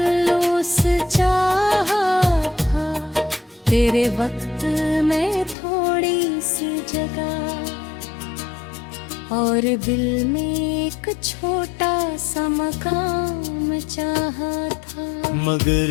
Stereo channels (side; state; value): right; drops out; at 5.6 s